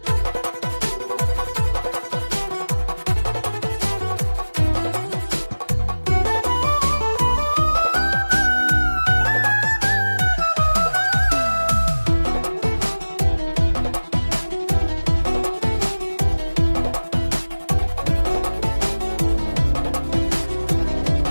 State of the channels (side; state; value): both; inverted; correlation -1.00